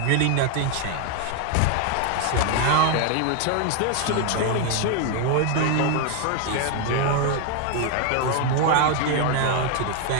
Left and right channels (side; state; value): both; different; correlation 0.01